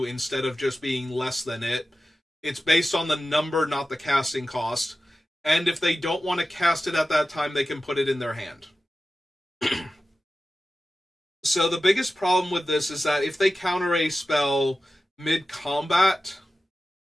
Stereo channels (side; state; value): both; normal; correlation 0.94